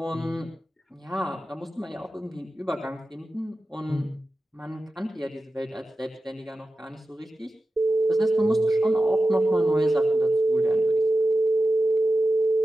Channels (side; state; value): both; normal; correlation 0.93